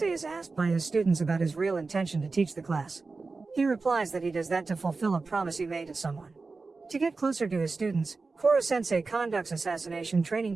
is asked by his students about his real intention to teach the class. He replies that he does that to fulfill a promise he made to someone. To get closer to his students, Koro-sensei conducts assassination training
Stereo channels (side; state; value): left; quieter; 4.0 dB